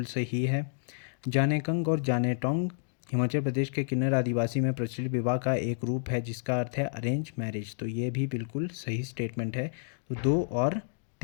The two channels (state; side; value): silent; right; digital silence